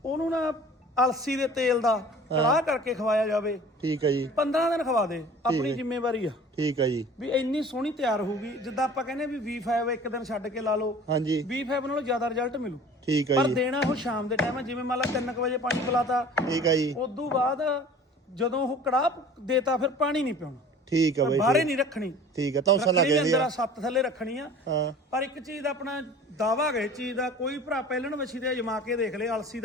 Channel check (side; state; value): both; normal; correlation 0.45